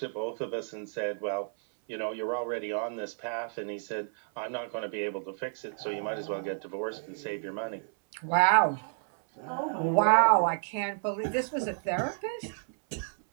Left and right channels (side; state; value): left; silent; 57 dB below the other